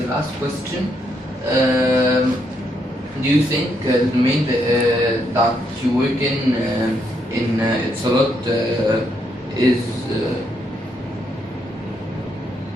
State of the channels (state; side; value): normal; both; correlation 0.76